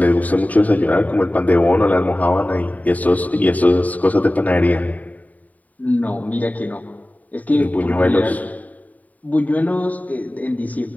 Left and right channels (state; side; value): late; right; 0.073 ms